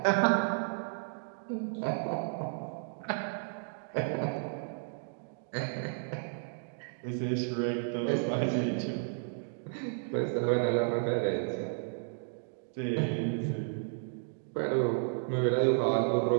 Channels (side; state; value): left; silent; digital silence